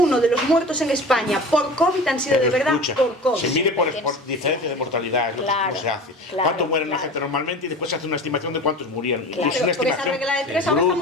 de los muertos en España por COVID han sido de verdad por COVID. Se mide por diferencia de mortalidad, es lo que se hace. ¿Cuánto muere la gente normalmente? Y después se hace una estimación de cuántos murieron. Claro, por esa regla de 3 ahora está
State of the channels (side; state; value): both; normal; correlation 0.36